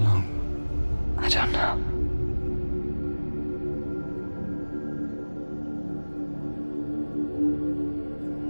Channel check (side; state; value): both; inverted; correlation -1.00